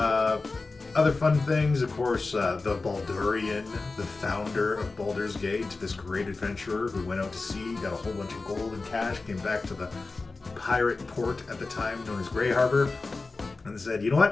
Other fun things, of course, the Baldurian, the founder of Baldur's Gate, this great adventurer who went out to sea, got a whole bunch of gold and cash, came back to the pirate port at the time known as Grey Harbor, and said, you know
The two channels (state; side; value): quieter; right; 3.7 dB